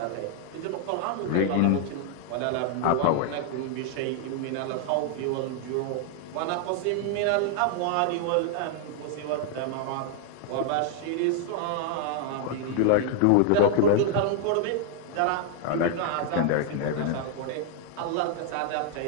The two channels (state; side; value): different; both; correlation 0.00